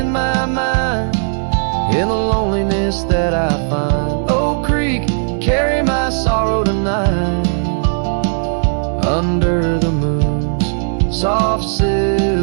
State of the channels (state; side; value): silent; left; digital silence